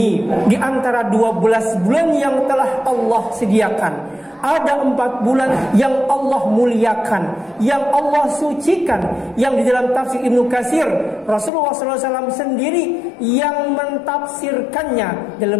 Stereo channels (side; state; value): right; drops out; at 11.5 s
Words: di antara 12 bulan yang telah Allah sediakan, ada 4 bulan yang Allah muliakan, yang Allah sucikan, yang di dalam tafsir Ibnu Katsir Rasulullah SAW sendiri yang mentafsirkannya. Dalam